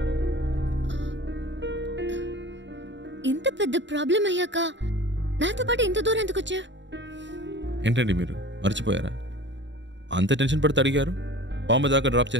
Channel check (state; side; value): late; left; 0.53 ms